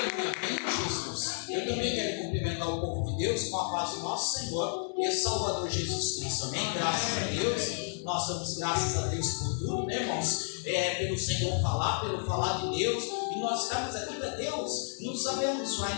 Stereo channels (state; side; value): silent; right; 57 dB below the other